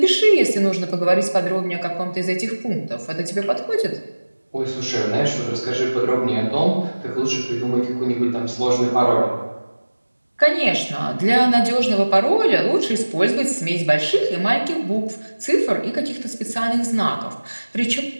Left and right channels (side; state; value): both; inverted; correlation -1.00